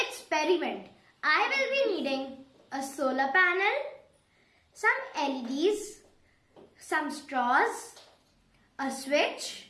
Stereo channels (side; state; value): both; identical; correlation 1.00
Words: experiment, I will be needing a solar panel, some LEDs, some straws, a switch,